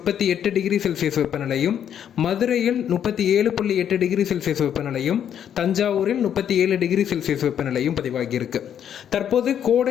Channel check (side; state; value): right; quieter; 9.3 dB